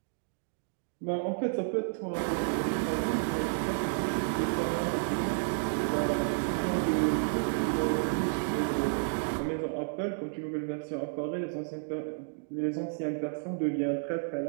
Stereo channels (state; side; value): silent; left; digital silence